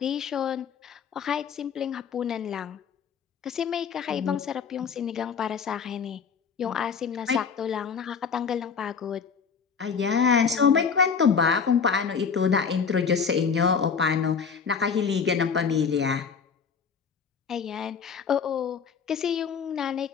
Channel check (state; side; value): quieter; right; 6.2 dB